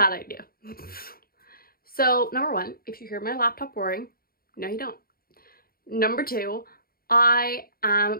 idea. So, number one, if you hear my laptop whirring, no you don't. Number two, I am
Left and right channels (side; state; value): right; late; 0.43 ms